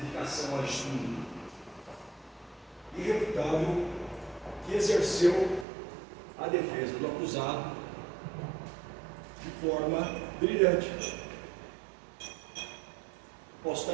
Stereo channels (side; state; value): left; drops out; at 5.7 s